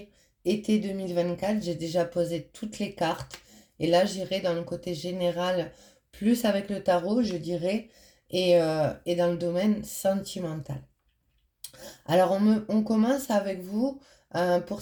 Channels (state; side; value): identical; both; correlation 1.00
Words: été 2024. J'ai déjà posé toutes les cartes. Et là, j'irai dans le côté général, plus avec le tarot, je dirais, et dans le domaine sentimental. Alors, on commence avec vous pour